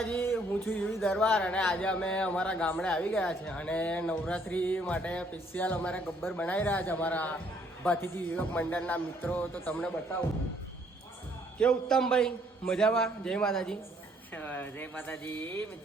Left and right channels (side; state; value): both; normal; correlation 0.65